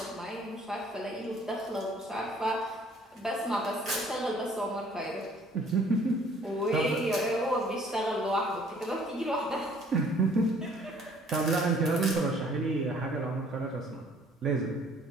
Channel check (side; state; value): both; normal; correlation 0.58